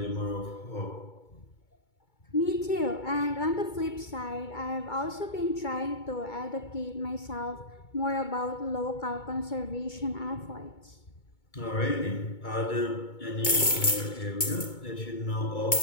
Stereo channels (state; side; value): late; right; 2.2 ms